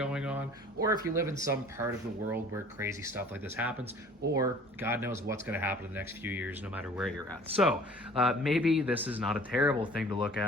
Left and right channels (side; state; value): both; normal; correlation 0.49